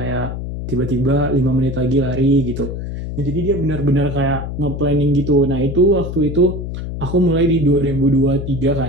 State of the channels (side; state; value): left; noise; hum, 6 dB below the sound